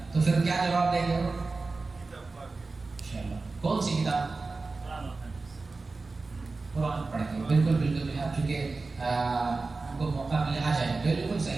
تو پھر کیا جواب دیں گے؟ ماشاءاللہ، کون سی کتاب؟ قرآن پڑھ کے۔ بالکل بالکل، آپ چونکہ ان کو موقع ملے آ جائیں، بالکل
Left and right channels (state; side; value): quieter; left; 3.8 dB